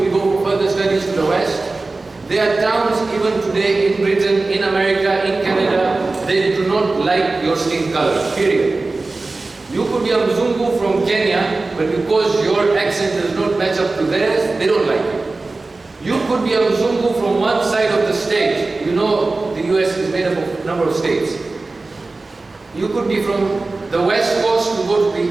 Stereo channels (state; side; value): quieter; left; 3.4 dB